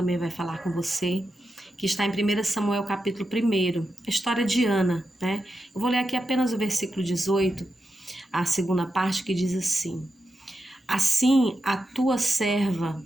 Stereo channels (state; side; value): normal; both; correlation 0.88